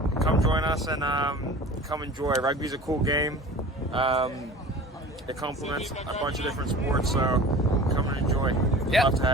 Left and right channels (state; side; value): normal; both; correlation 0.40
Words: come join us and come enjoy. Rugby's a cool game. It complements a bunch of different sports, so come and enjoy. Yep. Love to